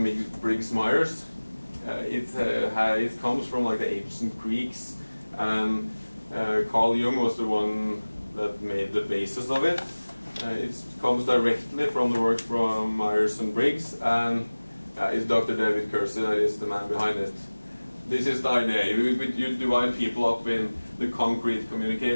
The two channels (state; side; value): inverted; both; correlation -1.00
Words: Briggs-Myers. It comes from like the ancient Greeks, and Carl Jung was the one that made the basis of it. It comes directly from the work from Myers and Briggs, and it's Dr. David Kersey that is the man behind it. This is the idea. You divide people up in the concrete